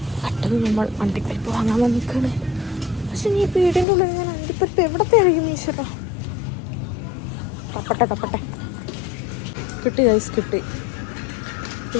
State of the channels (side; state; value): right; drops out; at 3.9 s